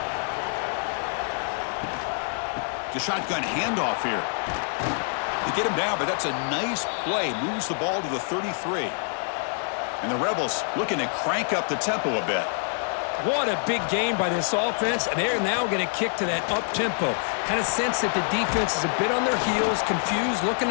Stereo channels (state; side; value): silent; right; 61 dB below the other